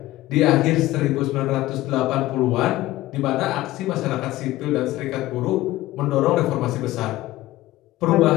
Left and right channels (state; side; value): quieter; right; 16.8 dB